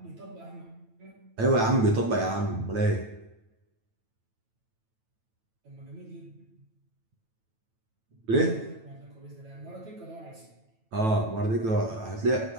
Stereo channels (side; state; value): left; late; 9.1 ms